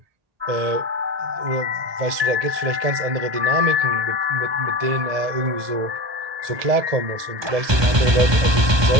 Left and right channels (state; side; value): late; left; 1.2 ms